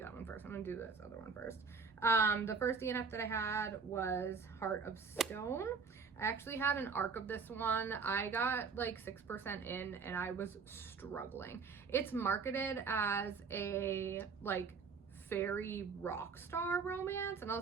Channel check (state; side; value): quieter; left; 5.4 dB